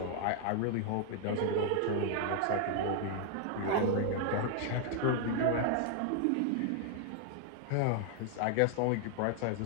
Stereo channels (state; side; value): different; both; correlation 0.00